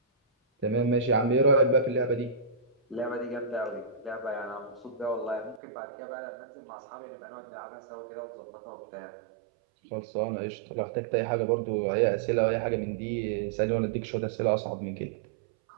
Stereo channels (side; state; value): left; drops out; at 5.6 s